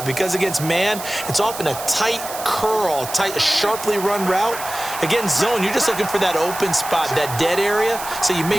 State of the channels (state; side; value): noise; right; hiss, 10 dB below the sound